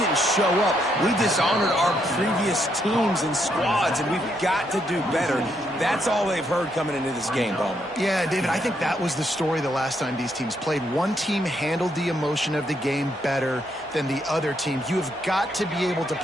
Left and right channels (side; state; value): both; normal; correlation 0.76